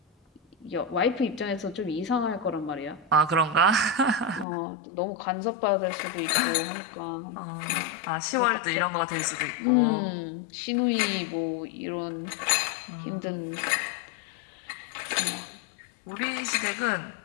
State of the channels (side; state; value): right; drops out; at 4.5 s